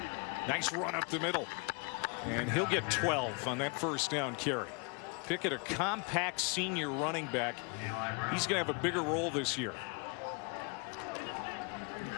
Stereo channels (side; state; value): right; quieter; 33.7 dB